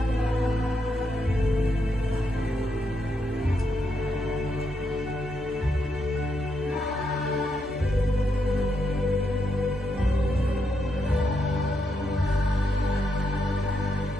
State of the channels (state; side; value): normal; both; correlation 0.81